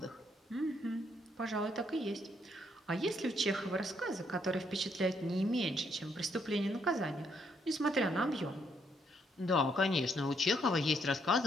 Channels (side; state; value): both; normal; correlation 0.73